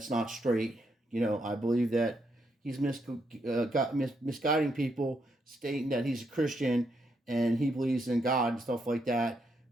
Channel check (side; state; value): both; normal; correlation 0.78